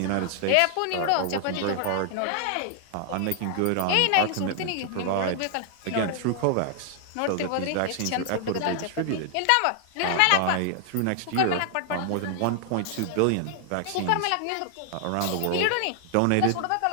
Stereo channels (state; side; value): different; both; correlation 0.00